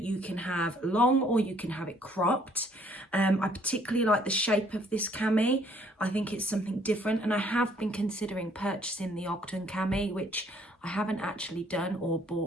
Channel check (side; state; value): both; normal; correlation 0.63